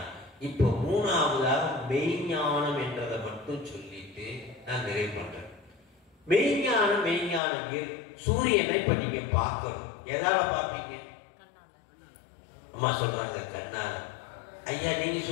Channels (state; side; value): drops out; right; at 7.4 s